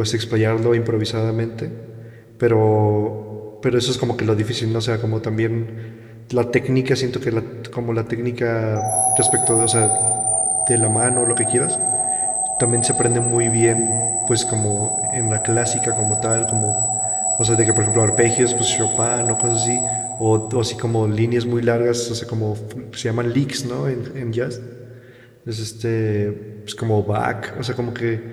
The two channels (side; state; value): both; identical; correlation 1.00